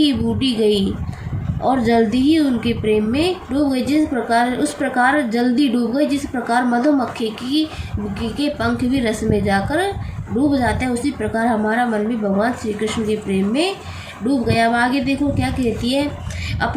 ही बूटी गई और जल्दी ही उनके प्रेम में डूब गई, उस प्रकार जल्दी डूब गई जिस प्रकार मधुमक्खी के पंख भी रस में जाकर डूब जाते हैं, उसी प्रकार हमारा मन भी भगवान श्री कृष्ण के प्रेम में डूब गया। अब आगे देखो क्या कहती है,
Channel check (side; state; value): both; identical; correlation 1.00